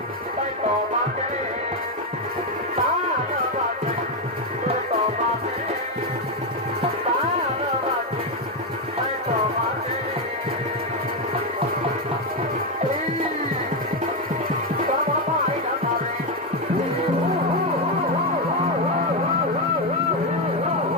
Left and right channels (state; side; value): normal; both; correlation 0.07